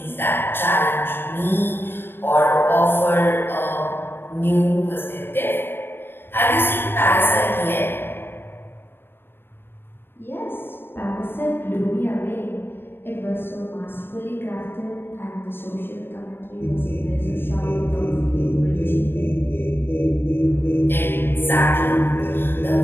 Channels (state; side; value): late; right; 0.10 ms